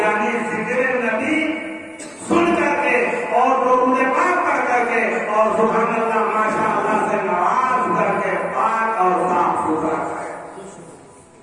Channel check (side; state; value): both; identical; correlation 1.00